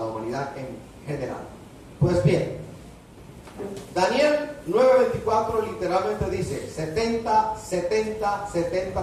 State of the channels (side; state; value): both; identical; correlation 1.00